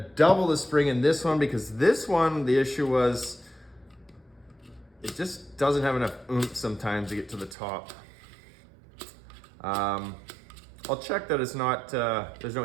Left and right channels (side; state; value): left; drops out; at 7.6 s